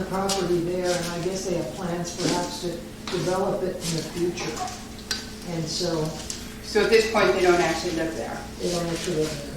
property there, and I guess they have plans perhaps to develop it in the future. And so... So at this point, they don't actually live there? They don't actually live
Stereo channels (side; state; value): both; identical; correlation 1.00